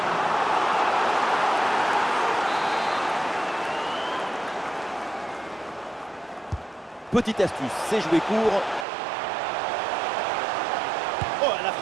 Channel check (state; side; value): drops out; left; at 8.8 s